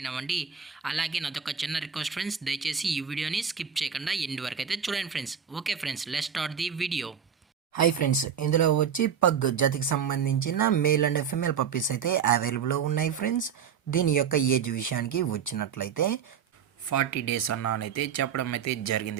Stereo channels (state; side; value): quieter; left; 7.6 dB